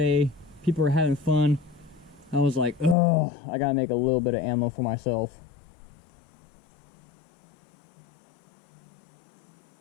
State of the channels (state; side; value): drops out; right; at 3.0 s